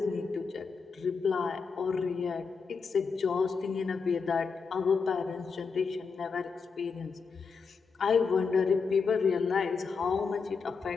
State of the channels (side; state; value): right; quieter; 5.2 dB